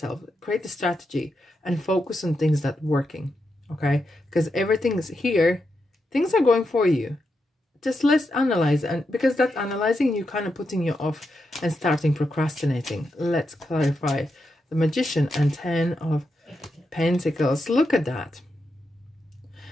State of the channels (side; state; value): both; normal; correlation 0.85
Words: create a strategy, and focus on things that are working. Okay, because everything's here, things are going for you. Just let's analyze, and because that analyzing, you kind of putting you off and starting procrastinating. Let's clarify. The Magician and 10 of Pentacles. Look at that.